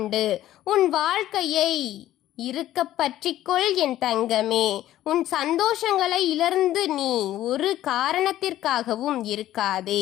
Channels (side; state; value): right; quieter; 13.6 dB